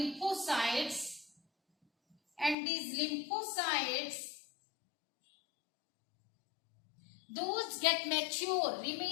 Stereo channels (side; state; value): right; drops out; at 2.6 s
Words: and these lymphocytes, those get mature,